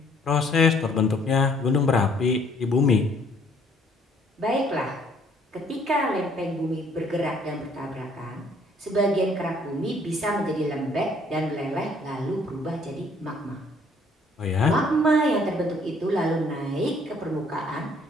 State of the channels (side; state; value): both; normal; correlation 0.62